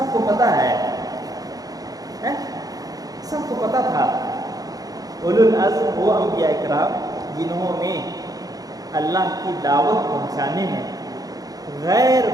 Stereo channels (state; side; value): late; left; 0.18 ms